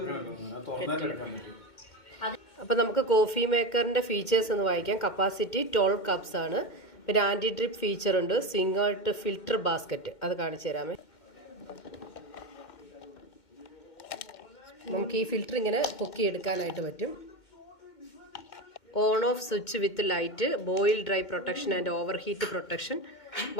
അപ്പൊ നമുക്ക് കോഫി മേക്കറിന്റെ ഫീച്ചേഴ്സ് ഒന്ന് വായിക്കാം. കപ്പാസിറ്റി 12 കപ്സ് ആണ്. പിന്നെ ആന്റി ഡ്രിപ്പ് ഫീച്ചർ ഉണ്ട്. സിംഗിൾ ഫിൽറ്റർ ബാസ്ക്കറ്റ്, അത് കാണിച്ചു തരാമേ. നമുക്ക് ഈ ഫിൽറ്റർ ഇങ്ങനെ പൊക്കിയെടുക്കാനായിട്ട് പറ്റും. On off switch with light, boil dry protection and over heat protection,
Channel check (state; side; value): late; right; 2.1 ms